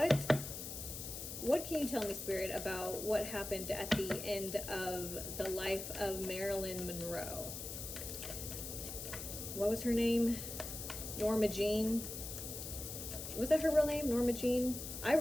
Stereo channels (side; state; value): left; noise; hiss, 7 dB below the sound